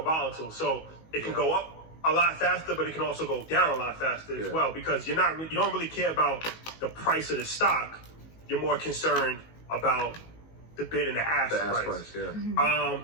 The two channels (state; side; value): late; right; 19 ms